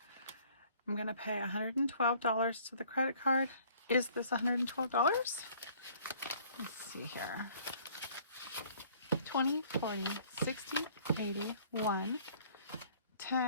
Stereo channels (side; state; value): both; inverted; correlation -0.56